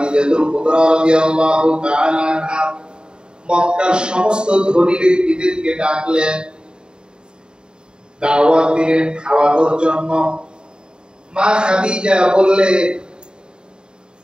কুবরা রাদিয়াল্লাহু তাআলা আনহা মক্কার সমস্ত ধনী ব্যক্তিদেরকে ডাকলেন, দাওয়াত দিলেন খাওয়ানোর জন্য। মা খাদিজা বললে,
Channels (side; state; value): left; late; 0.049 ms